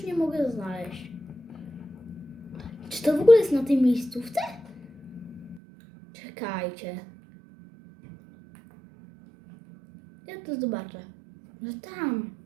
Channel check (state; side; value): drops out; left; at 5.6 s